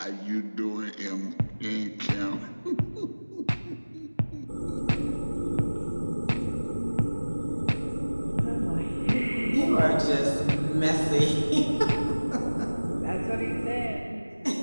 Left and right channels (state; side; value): inverted; both; correlation -1.00